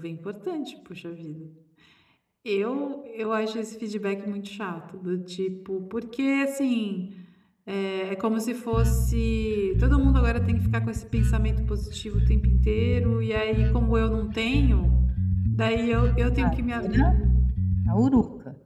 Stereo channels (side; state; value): both; identical; correlation 1.00